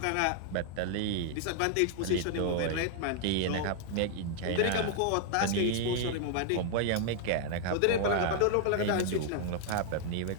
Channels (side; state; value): both; different; correlation 0.00